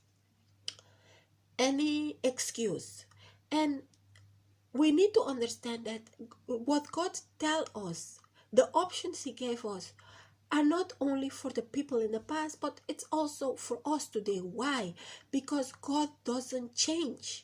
any excuse. And we need to understand that what God tells us, the options he gave us, are not only for the people in the past, but it's also for us today. Why? Because God doesn't change.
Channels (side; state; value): both; identical; correlation 1.00